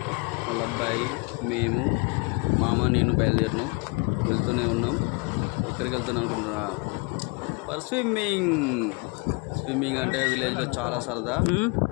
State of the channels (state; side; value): quieter; right; 30.3 dB